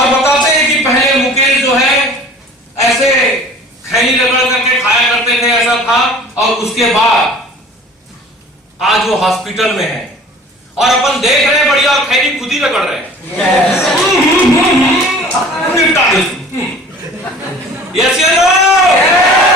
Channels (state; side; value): normal; both; correlation 0.46